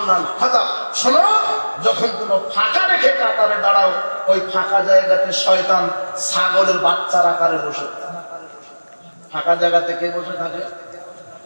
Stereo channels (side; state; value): both; inverted; correlation -1.00